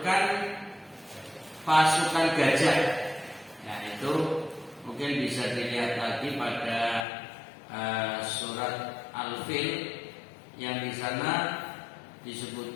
pasukan gajah. Nah, itu mungkin bisa dilihat lagi pada surat Al-Fil yang di sana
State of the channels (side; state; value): right; drops out; at 7.1 s